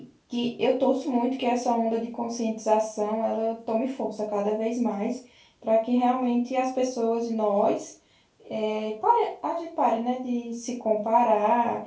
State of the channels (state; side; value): identical; both; correlation 1.00